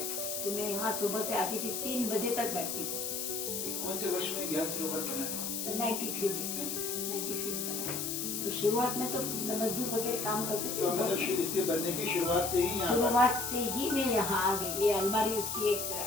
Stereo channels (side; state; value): left; noise; hiss, 3 dB below the sound